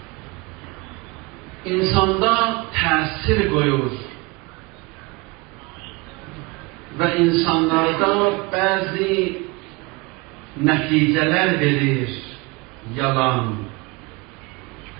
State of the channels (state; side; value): quieter; left; 26.0 dB